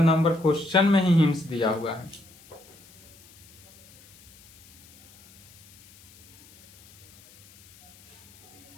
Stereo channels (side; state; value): left; noise; hiss, 26 dB below the sound